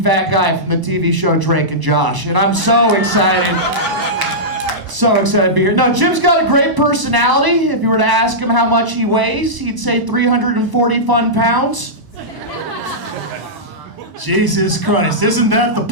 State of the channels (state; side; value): late; left; 1.0 ms